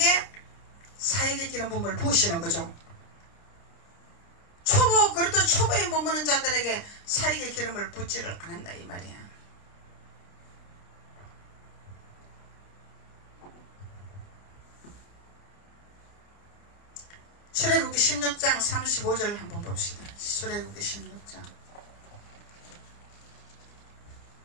사역의 기름 부음을 부으시는 거죠. 그래도 초보에 머무는 자들에게 사역의 기름을 붓지를 않는다 이 말이야. 출애굽기 16장 35절 한번 봅시다. 출애굽기 16장.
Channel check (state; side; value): late; right; 29 ms